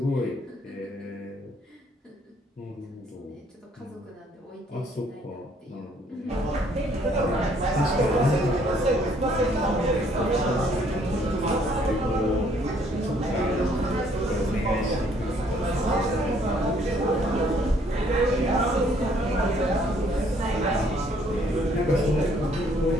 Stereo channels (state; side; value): normal; both; correlation 0.64